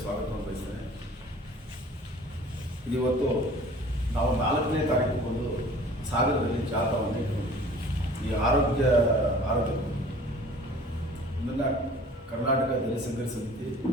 ಸ್ವಾಗತವನ್ನು ಬಯಸ್ತೇನೆ. ಇವತ್ತು ನಾವು 4ನೇ ತಾರೀಕು ಸಾಗರದಲ್ಲಿ ಜಾಥಾವನ್ನು ಈ ಆರೋಗ್ಯ ಇದನ್ನು ಕರ್ನಾಟಕ ದಲಿತ ಸಂಘರ್ಷ ಸಮಿತಿ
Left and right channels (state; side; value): normal; both; correlation 0.47